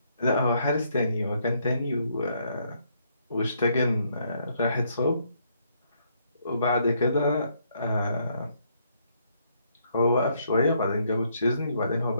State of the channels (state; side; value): inverted; both; correlation -0.71